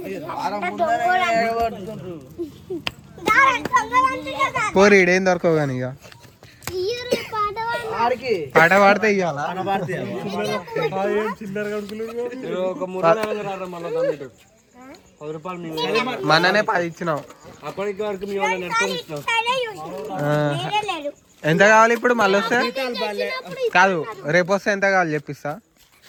పోరి ఈడేం దొరకవు కానీ ఇక పాట పాడితే ఇవ్వాల. ఒక 3 నెలలు రారా మళ్ళీ 10 రూపాయలు మననే 10 ఇచ్చినాం. అప్పటికి వరకు మీ వాళ్ళని నెట్టుకొని ఇచ్చినాం. ఎంత కావాలి ఇప్పుడు మళ్ళీ వస్తే? కాదు రేపు వస్తే ఎంత కావాలి చెప్పిస్తా.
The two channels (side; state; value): both; identical; correlation 1.00